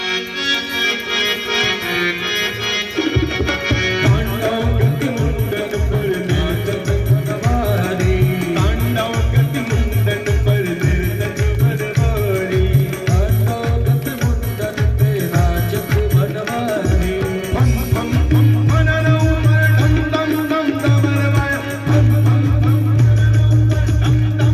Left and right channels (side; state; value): both; identical; correlation 1.00